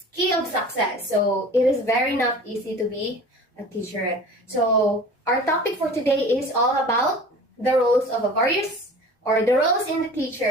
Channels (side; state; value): both; normal; correlation 0.41